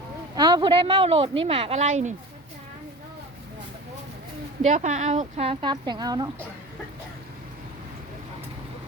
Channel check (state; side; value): normal; both; correlation 0.34